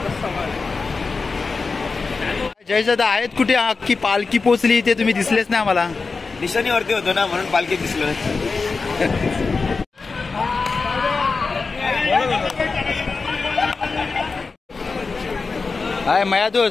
जयदादा आहेत कुठे? अख्खी पालखी पोचली ते तुम्ही दिसलेच नाही आम्हाला. निशाणीवरती होतो ना म्हणून पालखी दिसलं. हाय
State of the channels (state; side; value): quieter; right; 4.4 dB